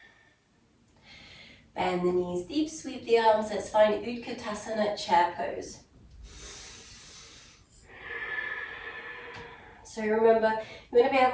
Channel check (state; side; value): identical; both; correlation 1.00